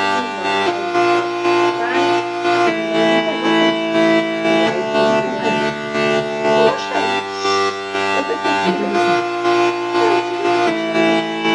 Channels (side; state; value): both; identical; correlation 1.00